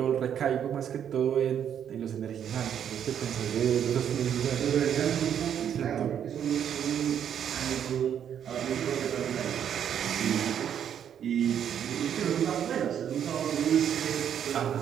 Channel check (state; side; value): quieter; left; 9.1 dB